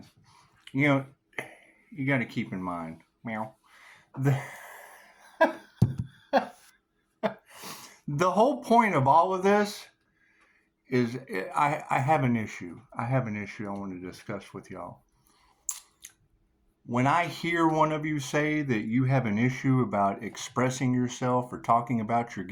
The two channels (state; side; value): identical; both; correlation 1.00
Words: You know, you got to keep in mind, meow, the, the whole point of all of this is I have an issue. I have an issue I want to discuss with y'all. When I hear one of you say that you have an issue about expressing yourself or talking about your